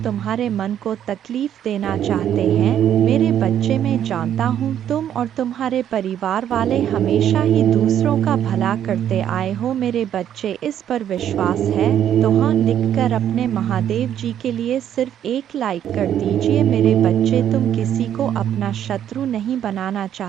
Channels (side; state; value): left; quieter; 10.2 dB